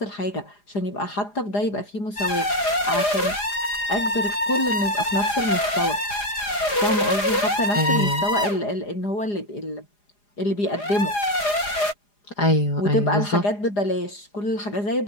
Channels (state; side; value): late; right; 4.9 ms